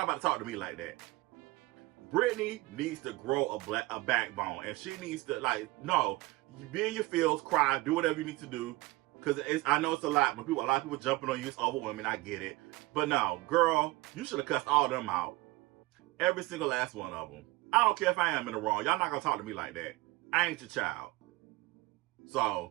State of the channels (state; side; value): quieter; left; 21.4 dB